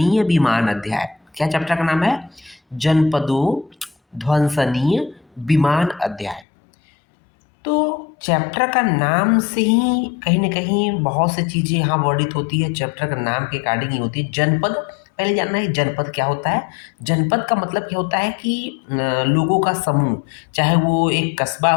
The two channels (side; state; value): right; drops out; at 6.5 s